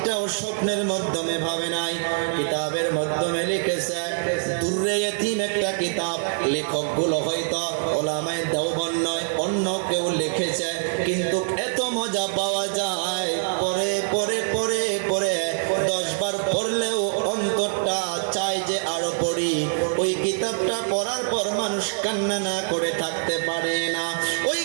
স্বপ্নের মাধ্যমে ভাবে নাই, কিতাবের মাধ্যমে লিখেছে। দুররে ইতিম একটা কিতাব, লেখকগুলো হয়তো ওলামায়ে দেওবন্দ নয়, অন্য কেউ লিখেছে, কিন্তু এত মজা পাওয়া যায়, পরে পরে পরে পরে 10 বার পড়লেও অন্তরটা চায় যে আরো পড়ি। ওই কিতাবটা পড়ার পর মানুষ কান্না না করে থাকতে পারে না। ওই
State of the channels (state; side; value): silent; left; digital silence